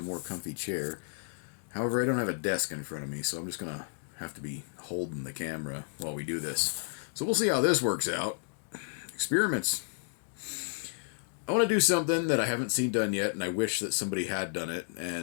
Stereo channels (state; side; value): silent; right; digital silence